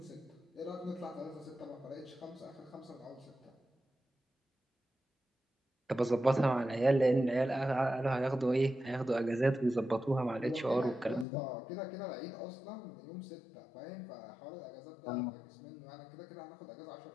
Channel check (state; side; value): drops out; right; at 11.2 s